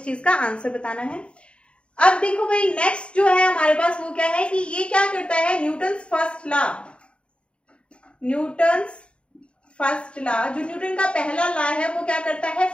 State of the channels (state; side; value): late; right; 0.057 ms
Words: चीज का आंसर बताना है। अब देखो भाई नेक्स्ट जो है हमारे पास वो क्या है कि ये क्या करता है, Newton's first law, Newton's first law, जो न्यूटन का पहला लॉ है वो क्या करता है,